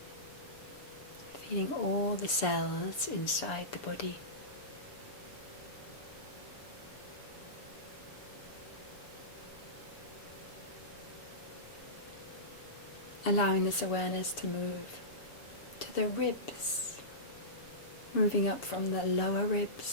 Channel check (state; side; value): late; right; 7.0 ms